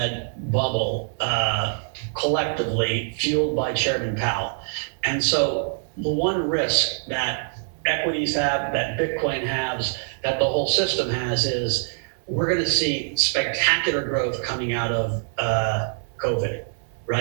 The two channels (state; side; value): silent; left; digital silence